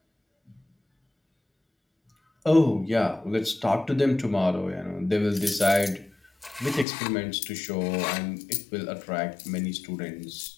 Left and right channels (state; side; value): drops out; right; at 6.9 s